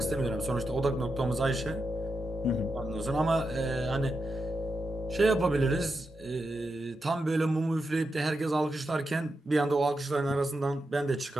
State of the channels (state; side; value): normal; both; correlation 0.87